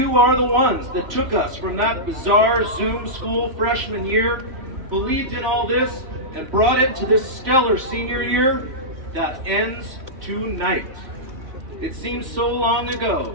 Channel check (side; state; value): left; late; 3.0 ms